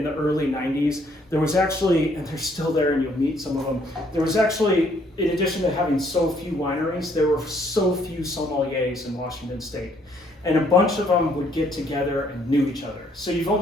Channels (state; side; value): normal; both; correlation 0.66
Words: the early 90s, there was actually, and they're still there and you'll meet some of them, there was actually, in addition to having so few wineries, there were so few sommeliers in Washington State. And a bunch of them would get together and knew each other. So you've